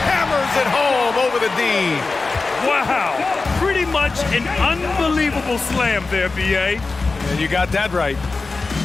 hammers it home over the D. Wow. Pretty much an unbelievable slam there, B.A. And you got that right.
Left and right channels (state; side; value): quieter; right; 3.9 dB